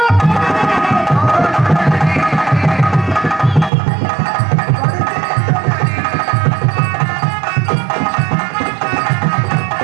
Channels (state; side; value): drops out; left; at 3.7 s